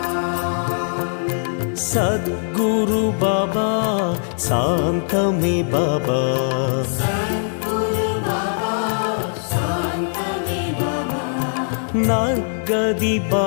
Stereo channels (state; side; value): silent; right; 65 dB below the other